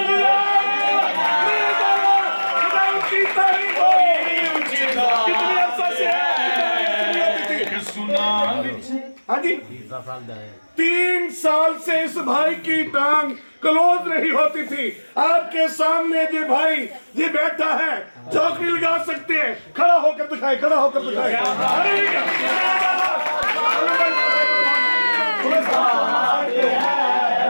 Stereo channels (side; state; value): both; inverted; correlation -1.00